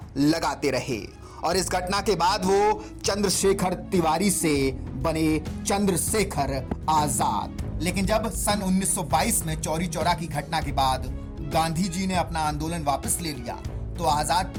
लगाते रहे और इस घटना के बाद वो चंद्रशेखर तिवारी से बने चंद्रशेखर आजाद। लेकिन जब सन 1922 में चौरी चौरा की घटना के बाद गांधी जी ने अपना आंदोलन वापस ले लिया तो आजाद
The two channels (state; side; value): identical; both; correlation 1.00